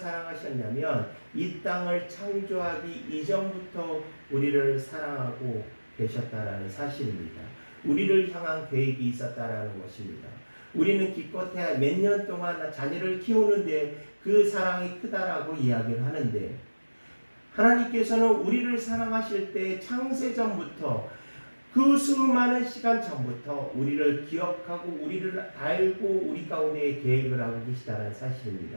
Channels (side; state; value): both; inverted; correlation -1.00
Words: 이 땅을 창조하기 이전부터 우리를 사랑하고 계셨다라는 사실입니다. 우리를 향한 계획이 있었다라는 것입니다. 우리는 기껏해야 몇 년 동안 자녀를 키우는데 그 사랑이 크다라고 이야기를 하는데, 하나님께서는 우리를 사랑하실 때 창세전부터 그 수많은 시간 전부터 우리를 기억하고 우리를 알고 우리 가운데 계획을 하고 계시다는 사실입니다.